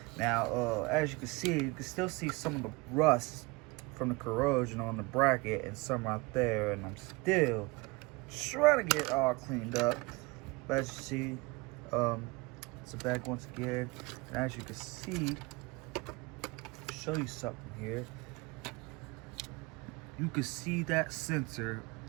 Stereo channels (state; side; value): quieter; left; 25.0 dB